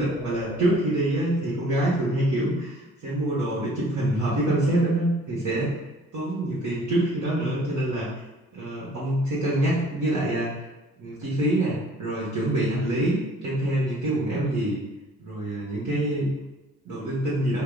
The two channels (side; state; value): both; normal; correlation 0.55